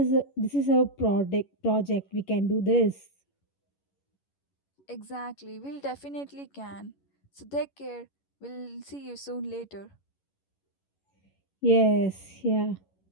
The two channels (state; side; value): late; right; 11 ms